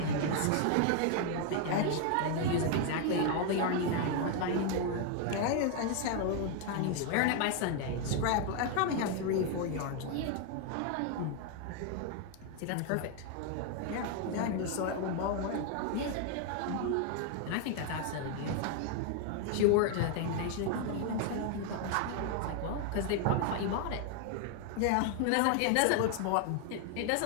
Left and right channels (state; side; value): different; both; correlation 0.00